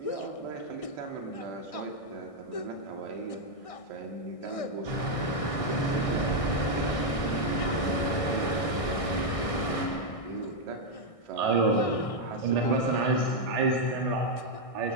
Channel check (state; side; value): late; right; 1.6 ms